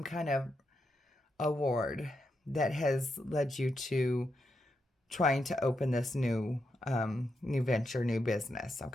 kind of award that has led you to trying to open this new venture, new business,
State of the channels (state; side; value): normal; both; correlation 0.84